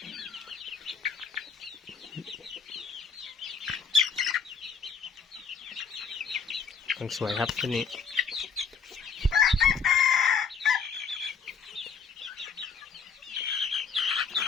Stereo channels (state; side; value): quieter; right; 5.9 dB